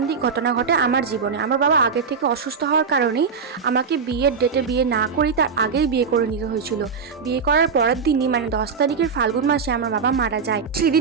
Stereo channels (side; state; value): left; quieter; 5.7 dB